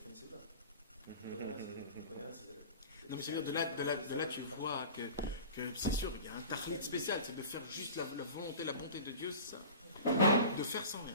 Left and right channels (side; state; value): both; inverted; correlation -0.38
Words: Non, mais c'est-à-dire, de là, tu vois que c'est sûr, il y a un tarlit spécial, c'est de faire juste la volonté, la bonté de Dieu, c'est ça. De faire sans rien.